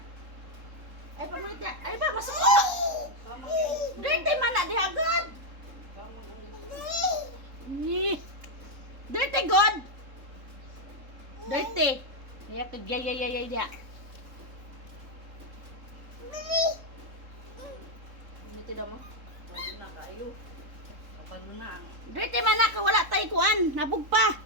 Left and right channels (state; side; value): late; left; 3.7 ms